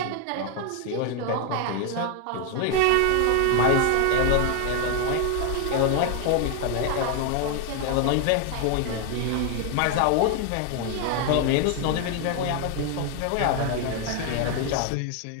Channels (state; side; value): different; both; correlation 0.01